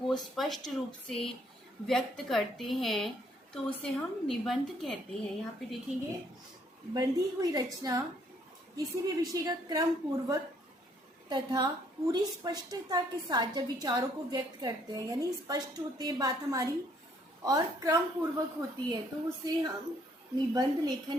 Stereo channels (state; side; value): normal; both; correlation 0.66